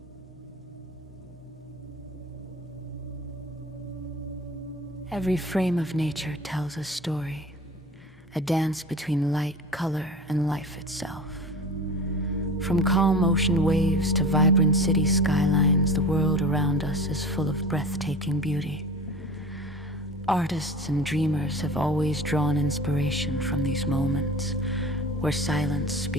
Every frame of nature tells a story, a dance between light, color, and life itself. From calm ocean waves to vibrant city skylines, the world around us is full of breathtaking beauty. Artists and dreamers have always drawn inspiration from these moments, where silence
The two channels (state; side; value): normal; both; correlation 0.35